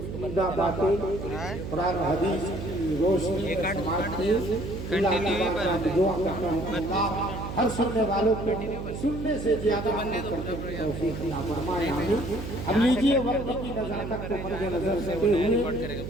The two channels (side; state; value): right; noise; hum, 7 dB below the sound